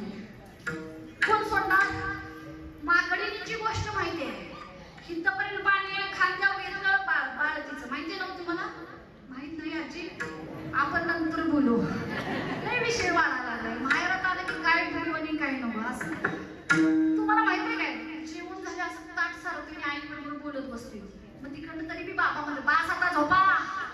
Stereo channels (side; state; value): both; identical; correlation 1.00